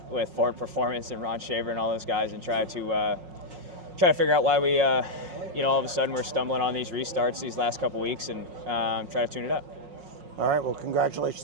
Ford Performance and Ron Shaver and all those guys and try to figure out why we you know, all of a sudden we're stumbling on these restarts these last couple weeks, and try to tune it up. All right, well,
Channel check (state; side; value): late; left; 5.5 ms